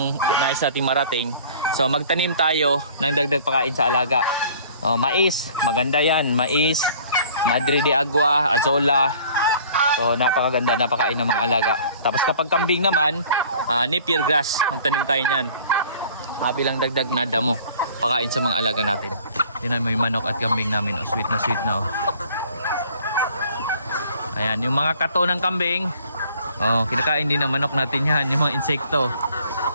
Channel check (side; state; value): both; inverted; correlation -0.52